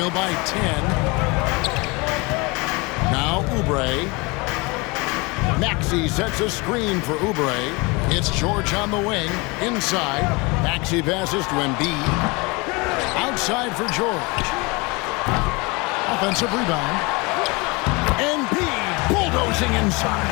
by 10. Now Oubre. Maxey sets a screen for Oubre. It's George on the wing. Inside. Maxey passes to Embiid. Outside for George. Offensive rebound. Embiid bulldozing inside.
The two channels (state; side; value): quieter; right; 26.7 dB